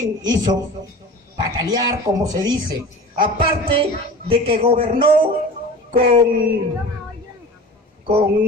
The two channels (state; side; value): normal; both; correlation 0.37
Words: hizo patalear, como se dice. Aparte de que gobernó